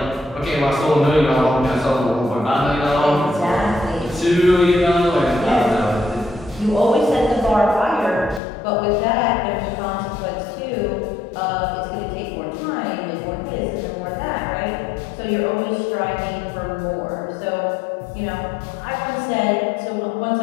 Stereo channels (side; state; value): right; drops out; at 8.4 s